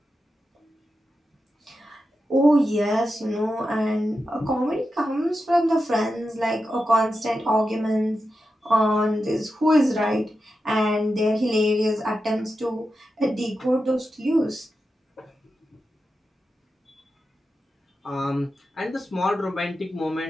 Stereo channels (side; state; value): both; normal; correlation 0.90